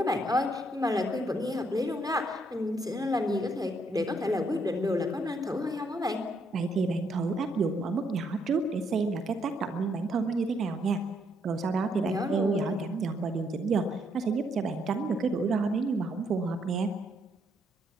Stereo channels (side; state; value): both; normal; correlation 0.73